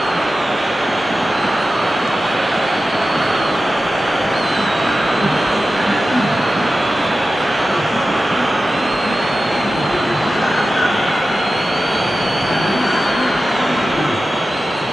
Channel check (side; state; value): both; normal; correlation 0.94